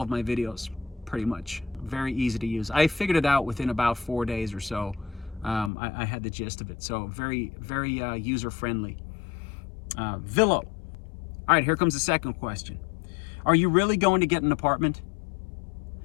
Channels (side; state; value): right; drops out; at 5.7 s